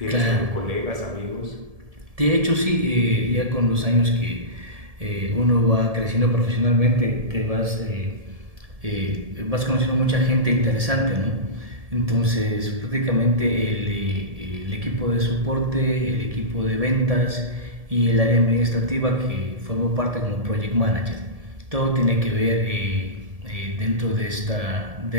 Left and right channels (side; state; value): left; late; 1.7 ms